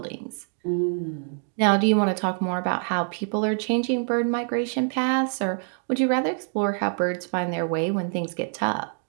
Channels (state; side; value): silent; left; 61 dB below the other